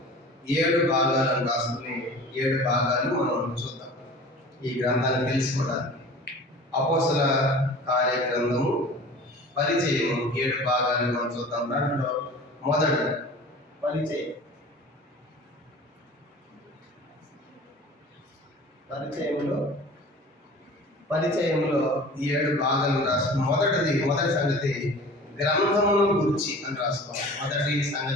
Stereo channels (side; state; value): both; normal; correlation 0.41